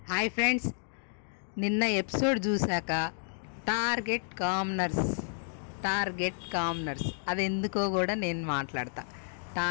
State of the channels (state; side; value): silent; right; digital silence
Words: Hi friends, నిన్న episode చూశాక target కామ్నర్స్ అది ఎందుకో కూడా నేను మాట్లాడతా.